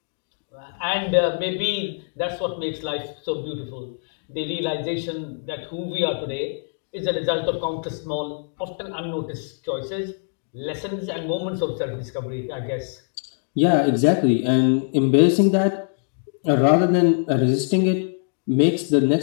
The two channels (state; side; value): silent; right; digital silence